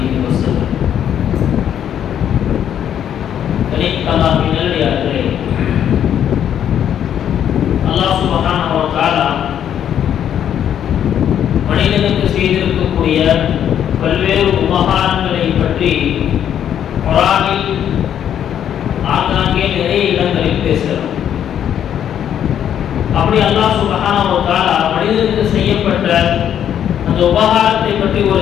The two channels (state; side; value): quieter; right; 9.7 dB